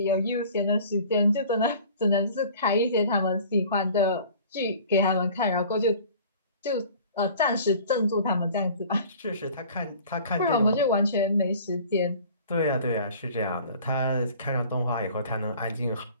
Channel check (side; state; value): both; inverted; correlation -0.46